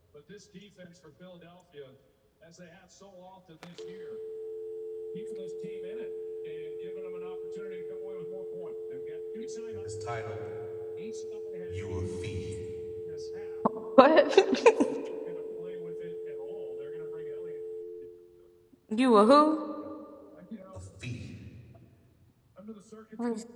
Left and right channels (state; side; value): identical; both; correlation 1.00